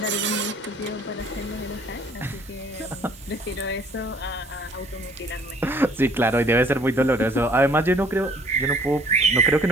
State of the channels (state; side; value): normal; both; correlation 0.58